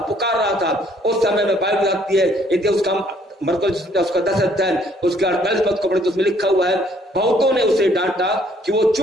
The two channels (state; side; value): normal; both; correlation 0.63